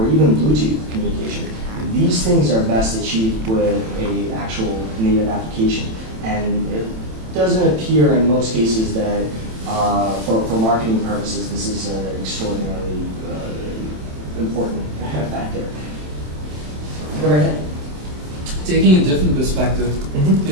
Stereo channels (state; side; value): late; left; 27 ms